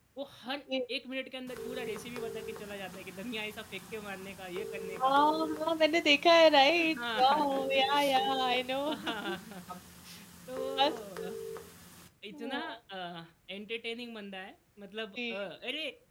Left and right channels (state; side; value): identical; both; correlation 1.00